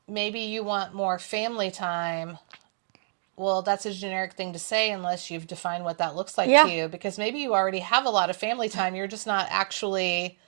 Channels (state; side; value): silent; left; digital silence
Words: maybe you want more family time. Well, that's a generic thing to say unless you've defined what that looks like to you, because maybe you already have a lot of family time. You're just not actually